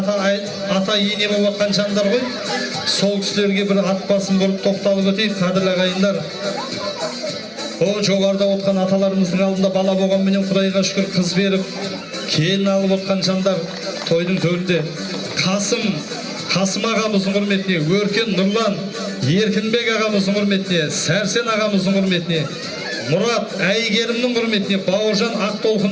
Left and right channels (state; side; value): identical; both; correlation 1.00